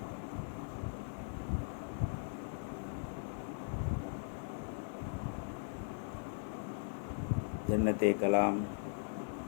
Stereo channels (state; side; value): silent; right; 52 dB below the other